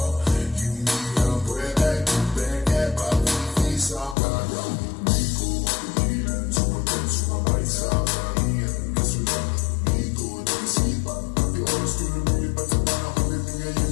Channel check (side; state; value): right; drops out; at 4.2 s